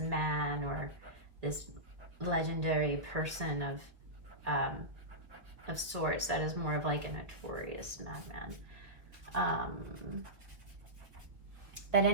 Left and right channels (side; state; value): left; late; 1.5 ms